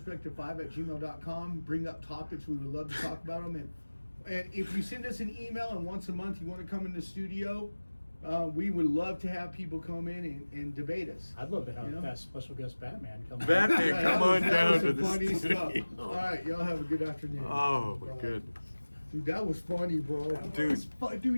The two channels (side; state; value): both; inverted; correlation -1.00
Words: Bring up topics. We would love to talk about them. And if you send us an email and once a month you want to come in the studio, we would love to have people come in and debate us. I'd love to have You know? that special guest Batman come. on. Batman, Yeah, come that on was down to some the funny studio. stuff. All right, y'all have a good afternoon. Oh my Bye. goodness. Dude, that was funny, bro. Dude,